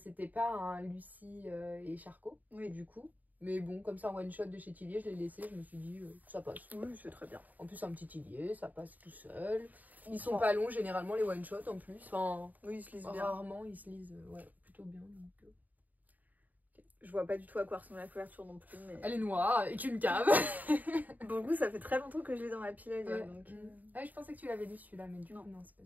pas un Lucie et Charcot, Oui. du coup. Mais bon, comme ça, un one-shot de chez Tillier, je l'ai laissé. Je me suis dit, ça passe. Oui, c'est très bien. En plus, un petit Tillier, ça passe tout seul. Ils sont Ouais. pas longs, généralement, les one-shots, en plus. Enfin, Oui, ils se lisent bien. rarement, ils se lisent ouais, plutôt bien. Donc, Je vois pas du tout à quoi ressemble la couverture non plus. Mais... Elle est noire, avec une cave. Pour le coup, ça fait très longtemps que je l'ai dans ma pile à lire. Ouais. Donc, Ah, je pensais que tu l'avais lu celui-là, mais du Non. coup, non, c'est pas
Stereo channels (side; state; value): left; late; 0.080 ms